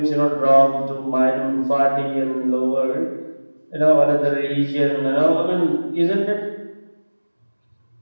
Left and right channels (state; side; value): inverted; both; correlation -1.00